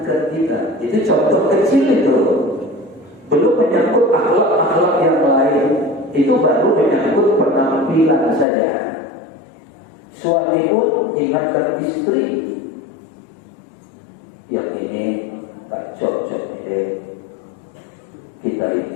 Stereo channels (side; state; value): right; drops out; at 8.5 s